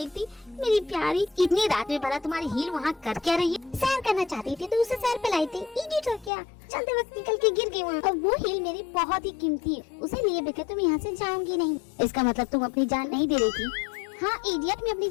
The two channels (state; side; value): drops out; right; at 6.3 s